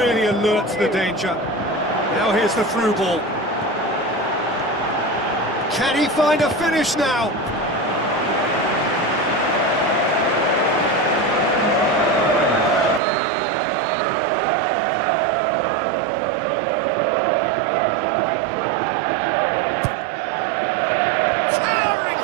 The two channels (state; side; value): drops out; left; at 13.0 s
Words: alert to the danger. Now here's the through ball. Can he find a finish now?